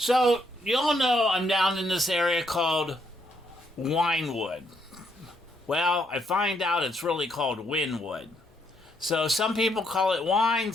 you all know I'm down in this area called Wynwood. Well, I find out it's really called Wynwood. So some people call it Wine,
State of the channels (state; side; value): normal; both; correlation 0.73